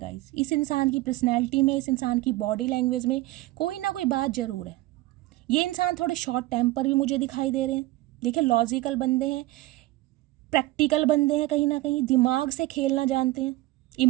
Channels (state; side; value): quieter; left; 18.4 dB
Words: इस इंसान की पर्सनैलिटी में, इस इंसान की बॉडी लैंग्वेज में कोई ना कोई बात ज़रूर है। ये इंसान थोड़े शॉर्ट टेम्पर भी मुझे दिखाई दे रहे हैं। देखिए लॉजिकल बंदे हैं, प्रैक्टिकल बंदे हैं, कहीं ना कहीं दिमाग से खेलना जानते हैं।